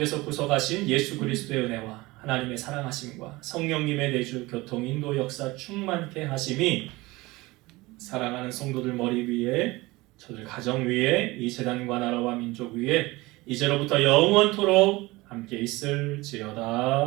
구속하신 예수 그리스도의 은혜와 하나님의 사랑하심과 성령님의 내주 교통 인도 역사 충만케 하심이 사랑하는 성도들 머리 위에, 저들 가정 위에, 이 재단과 나라와 민족 위에 이제로부터 영원토록 함께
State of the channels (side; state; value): left; quieter; 21.3 dB